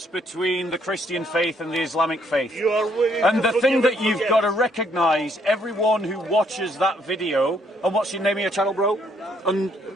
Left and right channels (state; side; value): normal; both; correlation 0.69